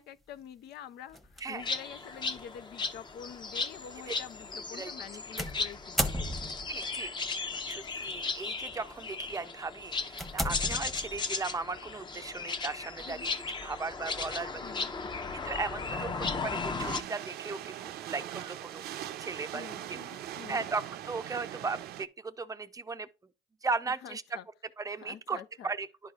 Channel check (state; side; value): normal; both; correlation 0.32